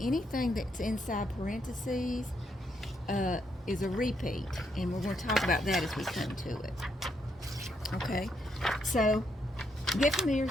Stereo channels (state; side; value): normal; both; correlation 0.77